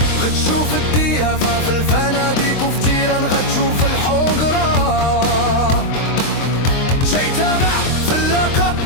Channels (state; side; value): late; right; 23 ms